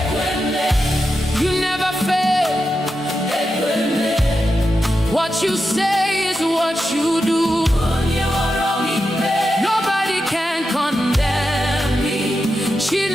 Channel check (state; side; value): normal; both; correlation 0.88